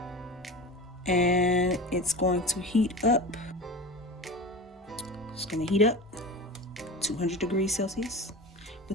And it's going to heat up. It's going to heat up 200 degrees Celsius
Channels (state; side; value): normal; both; correlation 0.30